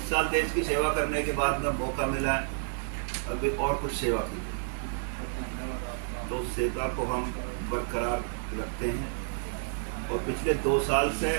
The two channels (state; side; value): silent; left; digital silence